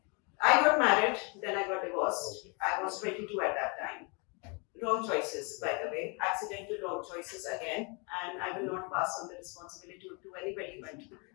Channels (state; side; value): quieter; right; 32.7 dB